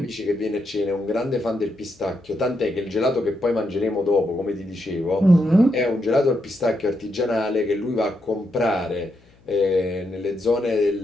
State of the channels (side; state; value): left; noise; hum, 30 dB below the sound